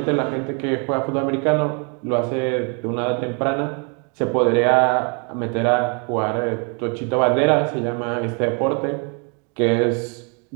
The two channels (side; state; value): left; quieter; 36.5 dB